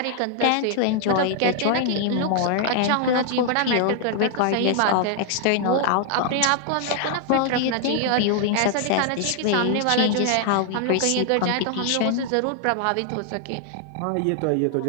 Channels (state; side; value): different; both; correlation 0.00